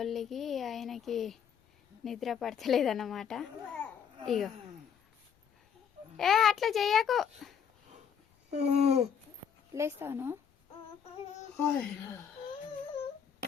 ఆయనకి నిద్ర పడతలేదన్నమాట. ఇగో అట్లా చెయ్యకు. లేస్తాను.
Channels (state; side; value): quieter; right; 7.7 dB